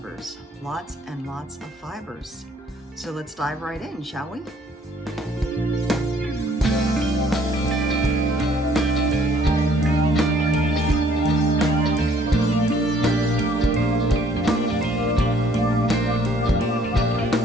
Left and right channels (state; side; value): normal; both; correlation 0.61